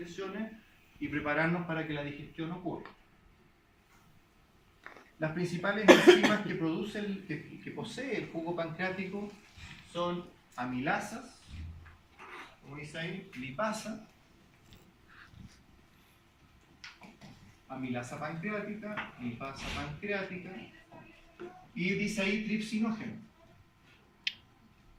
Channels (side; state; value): both; identical; correlation 1.00